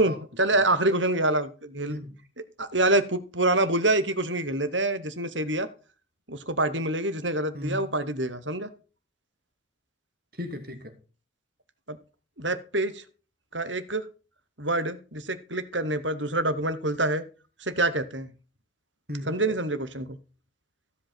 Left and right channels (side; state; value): both; normal; correlation -0.07